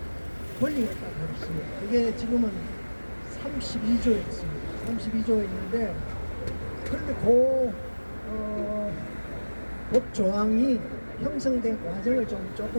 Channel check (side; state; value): both; inverted; correlation -1.00